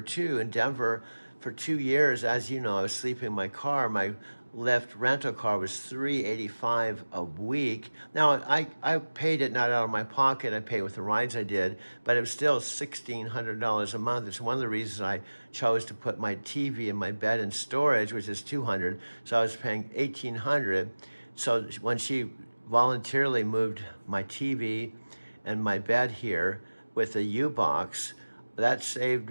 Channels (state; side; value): inverted; both; correlation -1.00